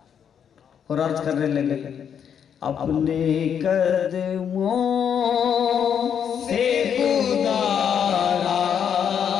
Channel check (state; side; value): quieter; right; 8.1 dB